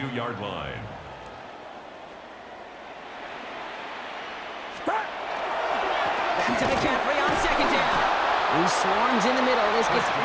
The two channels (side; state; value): both; identical; correlation 1.00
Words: line. Back to McCaffrey on second down. He swarms in the middle. This gets